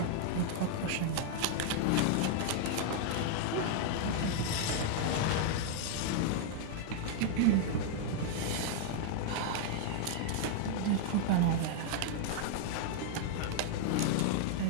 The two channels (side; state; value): both; different; correlation -0.01